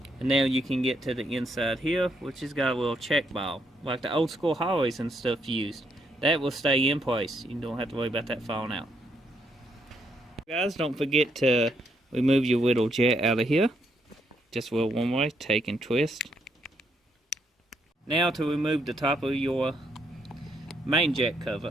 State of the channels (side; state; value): both; normal; correlation 0.75